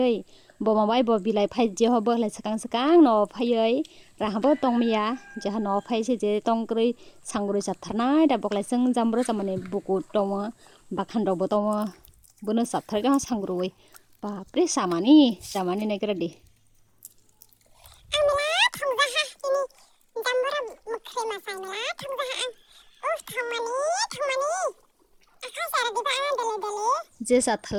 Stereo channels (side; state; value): both; identical; correlation 1.00